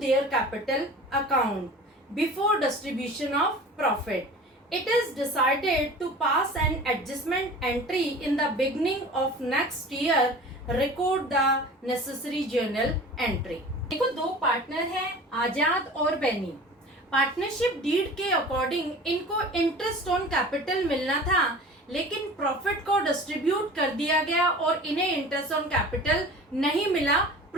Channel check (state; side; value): normal; both; correlation 0.40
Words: capital account before distribution of profit. It is decided to pass an adjustment entry in the beginning of next year. Record the necessary journal entry. देखो दो partner हैं, आजाद और Beni. Partnership deed के according इनको interest on capital मिलना था, लेकिन profit को डिस्ट्रीब्यूट कर दिया गया और इन्हें इंटरेस्ट ऑन कैपिटल नहीं मिला